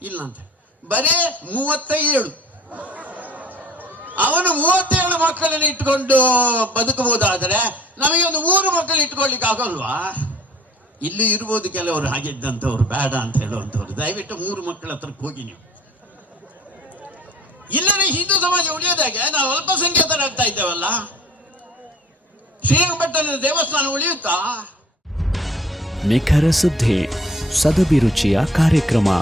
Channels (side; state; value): both; normal; correlation 0.52